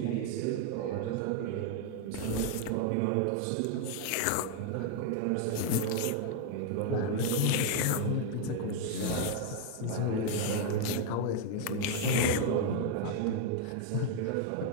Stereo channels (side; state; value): both; different; correlation 0.01